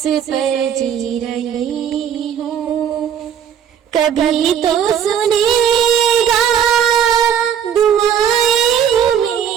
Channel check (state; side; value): quieter; left; 8.7 dB